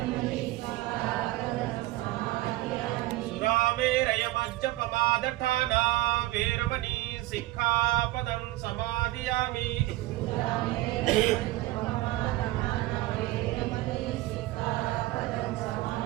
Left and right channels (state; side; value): quieter; left; 17.8 dB